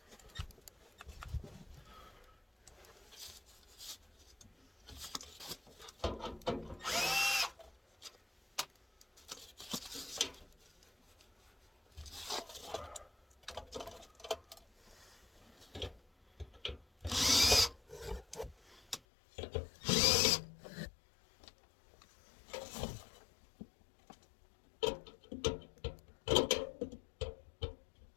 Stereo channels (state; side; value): drops out; right; at 19.0 s